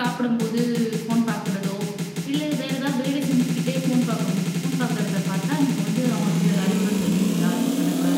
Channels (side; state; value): both; identical; correlation 1.00